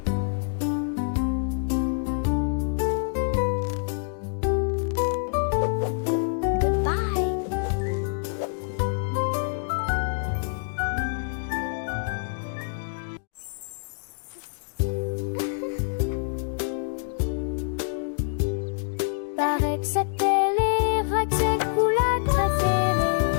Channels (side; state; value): right; silent; digital silence